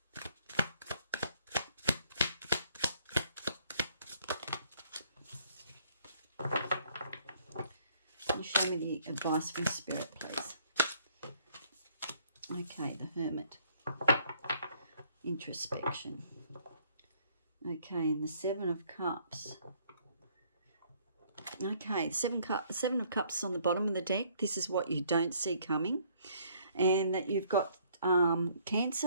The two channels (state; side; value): inverted; both; correlation -0.63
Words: Show me the advice from Spirit, please. Okay, the Hermit. Introspection. Okay, and the Seven of Cups. Okay, Seven of Cups on the bottom of the deck. This is what you don't see coming. And that you've got